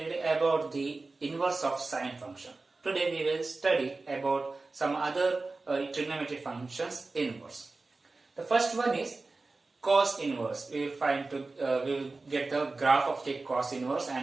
about the inverse of sine function. Today we will study about some other trigonometric functions inverse. The first one is cos inverse. We will get the graph of the cos inverse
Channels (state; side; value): quieter; left; 3.5 dB